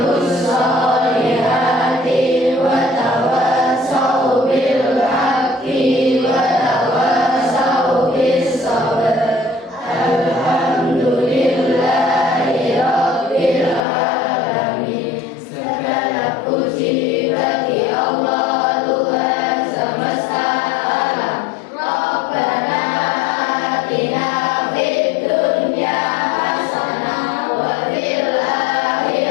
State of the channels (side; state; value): right; drops out; at 13.9 s